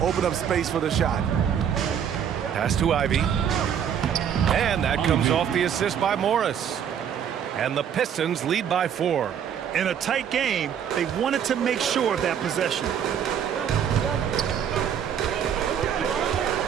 open up space for the shot. Pass to Ivy. And that comes off the assist by Morris. And the Pistons lead by 4. In a tight game, they wanted to make sure of that possession.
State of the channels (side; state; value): left; quieter; 8.5 dB